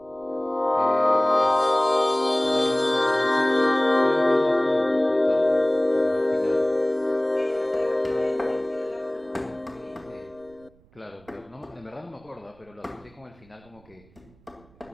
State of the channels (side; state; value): right; noise; rumble, 29 dB below the sound